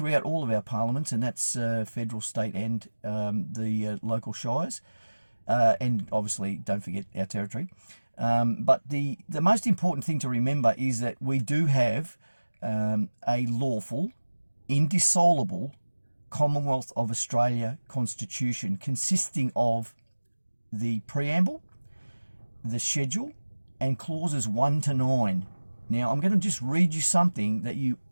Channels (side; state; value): both; inverted; correlation -1.00